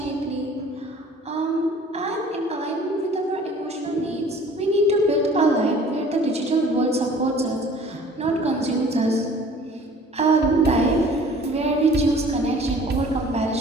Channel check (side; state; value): both; normal; correlation 0.50